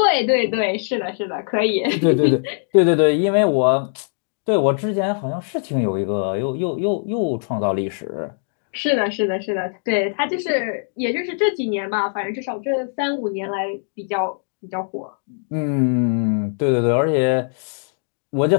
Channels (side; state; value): right; silent; 65 dB below the other